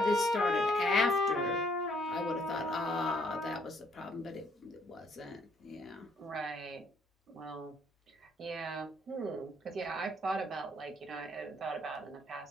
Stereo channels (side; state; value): both; normal; correlation 0.67